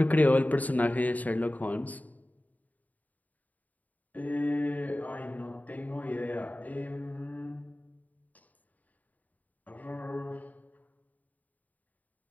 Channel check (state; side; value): late; right; 0.077 ms